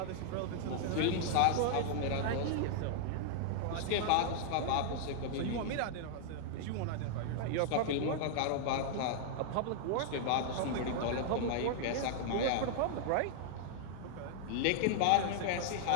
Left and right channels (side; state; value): both; different; correlation -0.01